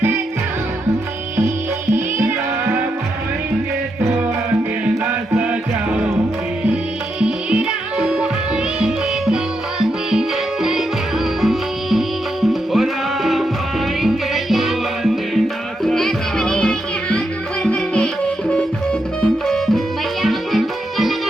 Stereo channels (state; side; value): normal; both; correlation 0.83